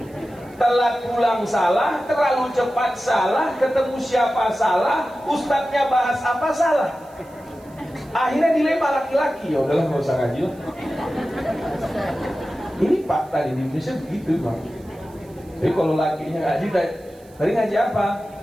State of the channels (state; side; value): noise; right; hiss, 29 dB below the sound